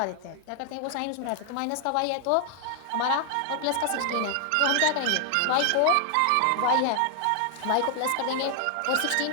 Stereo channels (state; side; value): different; both; correlation 0.00